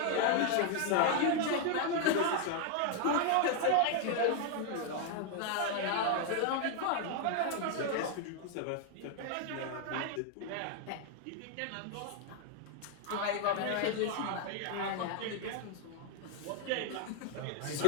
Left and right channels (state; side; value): different; both; correlation 0.00